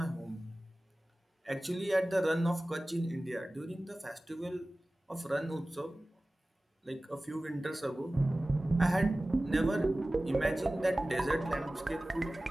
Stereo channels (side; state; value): both; normal; correlation 0.97